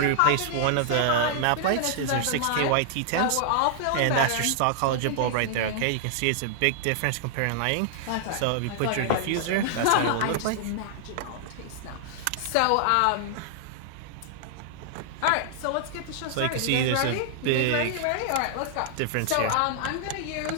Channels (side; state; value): both; different; correlation -0.01